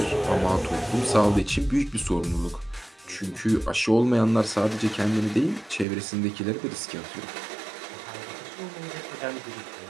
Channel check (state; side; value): drops out; left; at 5.9 s